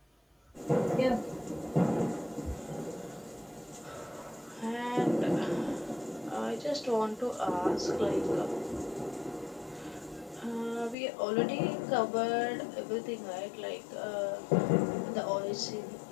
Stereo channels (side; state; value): right; drops out; at 11.0 s